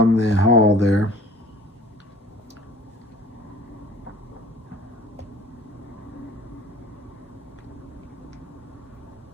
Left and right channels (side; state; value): both; normal; correlation 0.48